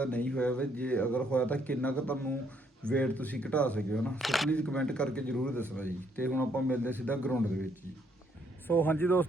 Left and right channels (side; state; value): both; normal; correlation 0.70